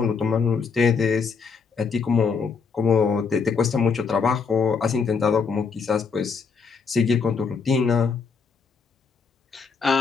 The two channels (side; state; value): right; quieter; 5.4 dB